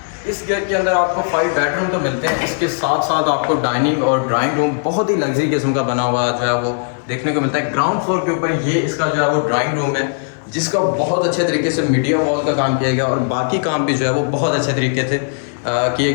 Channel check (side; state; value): right; silent; 58 dB below the other